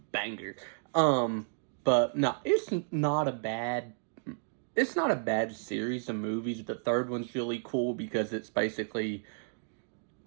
banger. But no, it's not a bad series of movies. The third one's really cool because it's basically,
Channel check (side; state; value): left; silent; digital silence